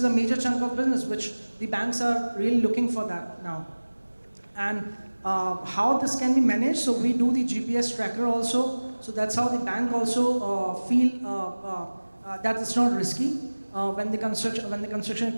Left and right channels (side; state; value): both; inverted; correlation -1.00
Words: a major chunk of business which the banks are really looking for that now. And how this can be managed? So we do the GPS tracker also. So that's how the bank also feel that it's not risky. When the construction